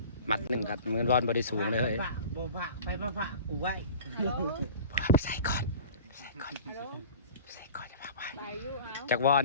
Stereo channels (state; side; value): inverted; both; correlation -0.40